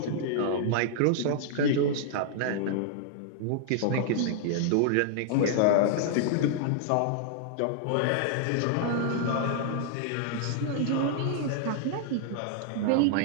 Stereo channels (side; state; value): both; different; correlation -0.01